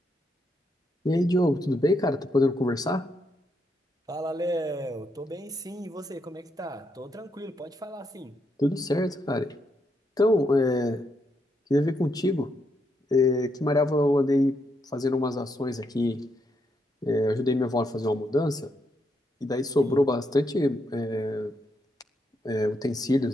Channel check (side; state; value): both; normal; correlation 0.79